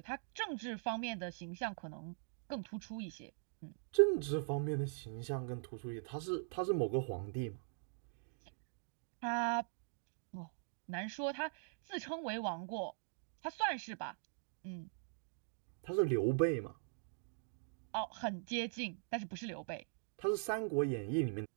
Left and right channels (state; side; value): silent; left; digital silence